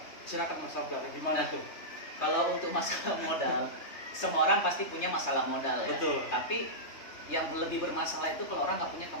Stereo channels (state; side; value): late; right; 3.3 ms